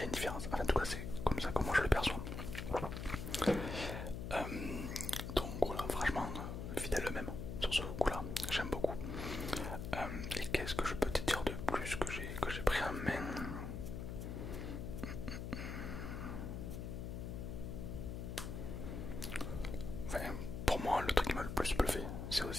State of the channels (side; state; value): left; noise; hum, 5 dB below the sound